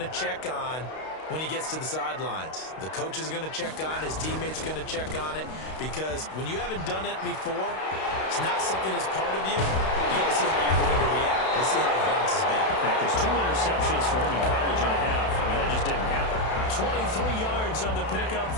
check on when he gets to the sidelines. The coach is going to check on, his teammates are going to check on it, because when you haven't done it before, it's not something that's part of you. You got to see how you're going to react. Let's see how he bounces back. There's 2 interceptions for him in college and a half. I mean, that just didn't happen. 23 yards on the pickup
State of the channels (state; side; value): late; right; 32 ms